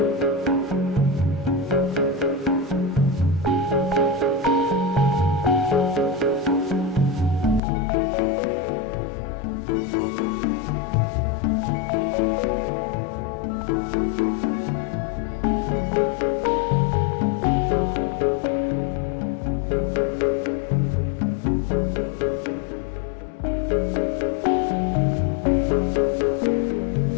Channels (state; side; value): drops out; right; at 7.6 s